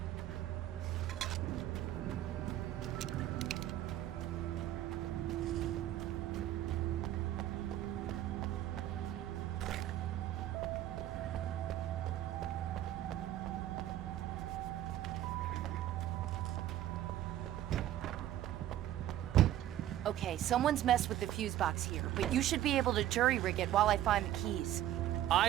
Okay, someone's messed with the fuse box here, but you should be able to jury-rig it while I find the keys.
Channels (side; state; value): left; quieter; 12.8 dB